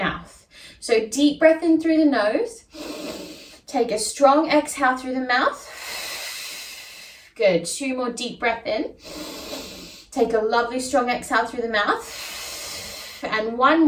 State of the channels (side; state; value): both; identical; correlation 1.00